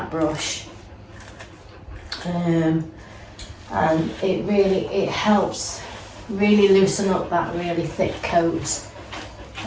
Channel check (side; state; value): both; identical; correlation 1.00